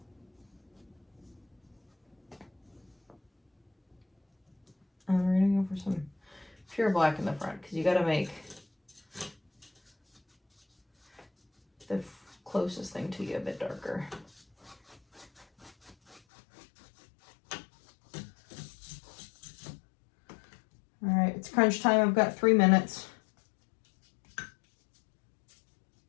And we're gonna go for some pure black in the front because you gotta make the closest thing to you a bit darker. All right, it's crunch time. I've got 3 minutes.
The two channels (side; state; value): right; drops out; at 16.2 s